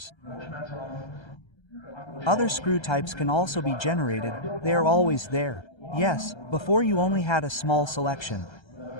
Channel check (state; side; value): late; right; 1.3 ms